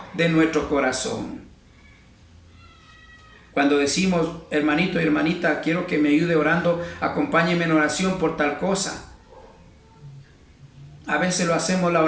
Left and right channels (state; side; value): identical; both; correlation 1.00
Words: de nuestro corazón. Cuando decimos: hermanito y hermanita, quiero que me ayude orando, acompáñeme en oración por tal cosa. A veces lo hacemos la